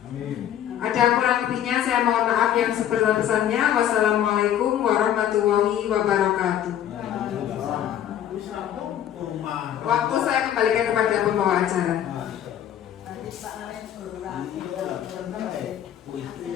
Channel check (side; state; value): right; quieter; 10.7 dB